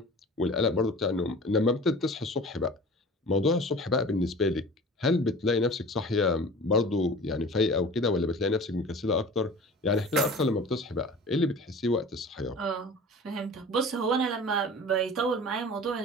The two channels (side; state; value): both; normal; correlation 0.40